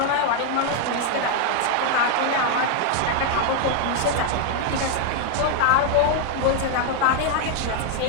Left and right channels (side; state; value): both; different; correlation 0.00